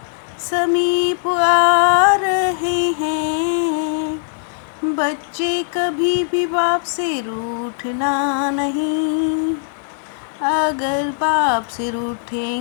समीप आ रहे हैं। बच्चे कभी भी बाप से रूठना नहीं। अगर बाप से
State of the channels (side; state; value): right; silent; 64 dB below the other